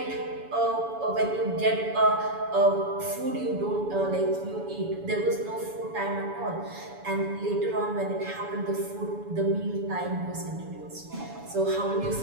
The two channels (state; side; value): late; left; 7.0 ms